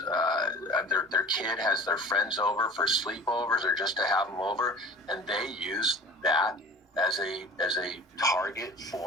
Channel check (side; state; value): both; normal; correlation 0.42